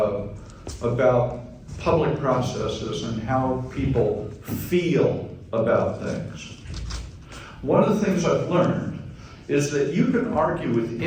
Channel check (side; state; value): both; identical; correlation 1.00